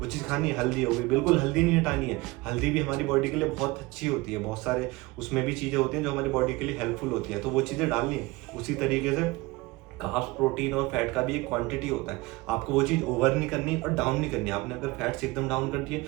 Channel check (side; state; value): left; quieter; 21.9 dB